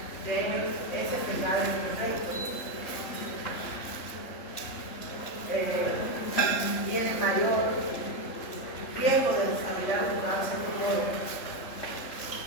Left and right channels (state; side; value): late; right; 3.4 ms